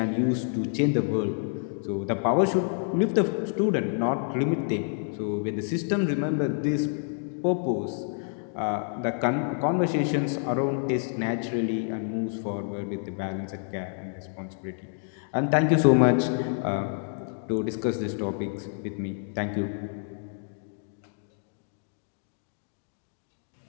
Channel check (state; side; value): silent; right; digital silence